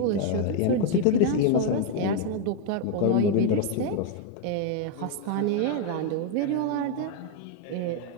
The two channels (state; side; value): different; both; correlation 0.01